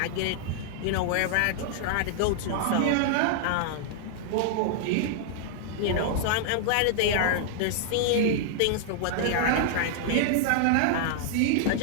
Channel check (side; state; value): both; different; correlation -0.01